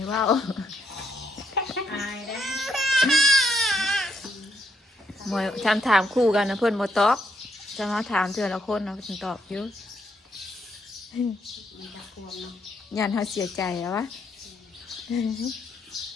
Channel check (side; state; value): both; normal; correlation 0.76